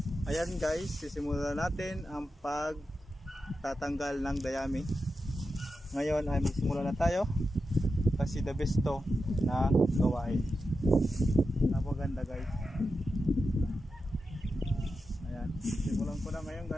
ayan guys, sisimulan natin ang pagtatanggal ng dayami. Ngayon ay magsimula na tayo kasi the best to na gawain. Napaganda guys. Ayan, simulan ko na ngayon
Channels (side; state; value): both; normal; correlation 0.90